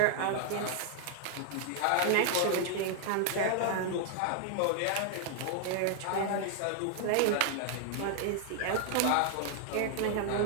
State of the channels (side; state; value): both; different; correlation 0.00